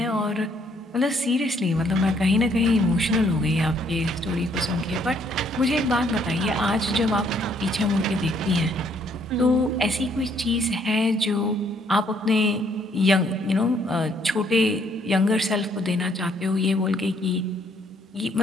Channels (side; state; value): both; normal; correlation 0.67